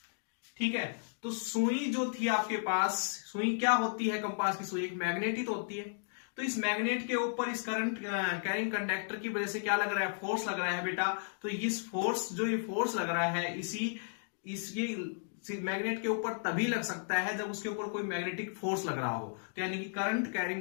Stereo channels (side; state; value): right; silent; digital silence